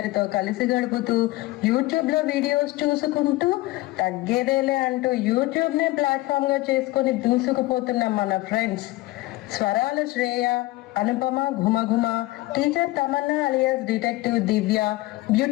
కలిసి గడుపుతూ యూట్యూబ్ లో వీడియోస్ చూసుకుంటూ తగ్గేదేలే అంటూ యూట్యూబ్ నే ప్లాట్ఫామ్ గా చేసుకుని దూసుకుపోతున్న మన ఫ్రెండ్స్ స్వరాల శ్రేయ, అనుపమ ఘుమఘుమ, teacher Tamanna alias detective Divya,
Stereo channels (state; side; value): quieter; right; 19.3 dB